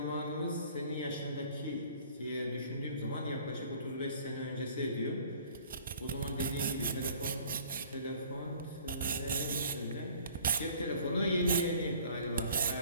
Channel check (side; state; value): both; inverted; correlation -0.52